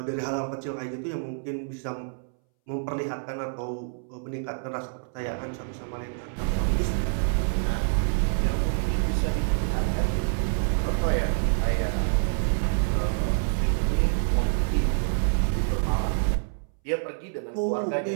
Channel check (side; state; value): left; silent; 60 dB below the other